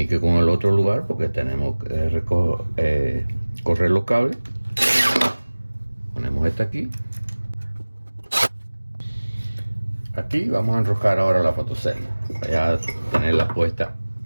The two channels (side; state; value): both; inverted; correlation -1.00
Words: con el otro lugar porque tenemos que correr los cables. Ponemos esta aquí. Aquí vamos a enroscar ahora la fotocelda. Voy a tenerla puesta